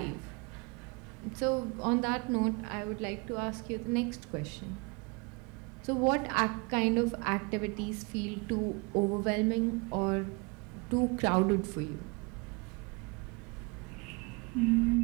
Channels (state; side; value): quieter; left; 30.0 dB